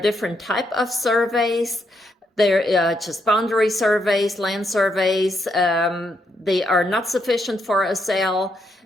type of surveys. They're just boundary surveys, land surveys. They are not sufficient for a sale.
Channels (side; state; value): both; normal; correlation 0.78